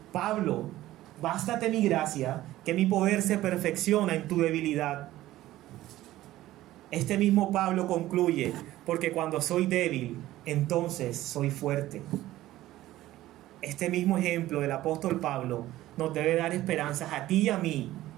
Pablo, bástate mi gracia, que mi poder se perfecciona en tu debilidad. Este mismo Pablo concluye, porque cuando soy débil, entonces soy fuerte. Este mismo ejemplo del apóstol Pablo nos debe dar esperanzas a ti y a mí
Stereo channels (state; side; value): quieter; left; 15.4 dB